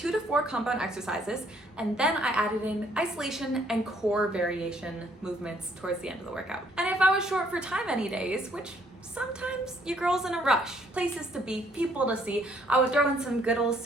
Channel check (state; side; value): normal; both; correlation 0.66